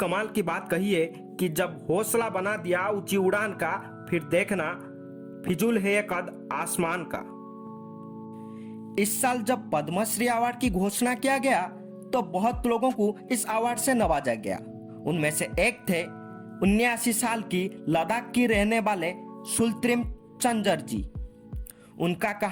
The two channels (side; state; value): both; identical; correlation 1.00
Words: की बात कही है कि जब हौसला बना दिया ऊंची उड़ान का, फिर देखना फिजूल है ये कद आसमान का। इस साल जब पद्मश्री अवार्ड की घोषणा किया गया तो बहुत लोगों को इस अवार्ड से नवाजा गया। उनमें से एक थे 79 साल की लद्दाख की रहने वाले सुल्त्रिम चंजर जी। उनका